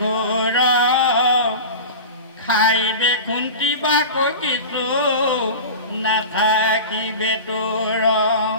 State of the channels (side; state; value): both; inverted; correlation -0.31